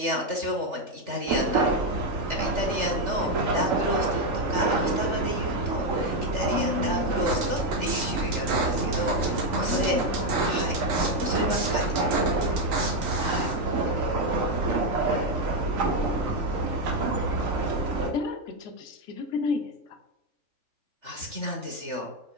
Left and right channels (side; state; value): left; late; 3.4 ms